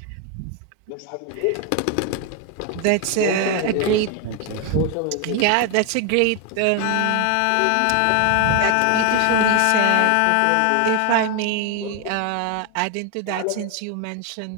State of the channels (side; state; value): both; different; correlation 0.01